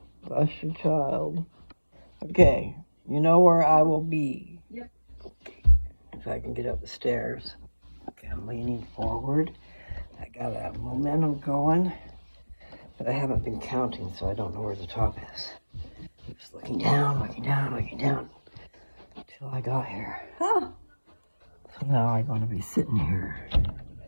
Bless you, child. Okay. You know where I will be. Yep. If I can get up the stairs. Okay, I'm leaning forward. I got a momentum going, but I haven't been counting, so I don't know where the top is. Just looking down, looking down, looking down, until I got here. Ah. So now I'm going to be sitting here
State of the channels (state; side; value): inverted; both; correlation -1.00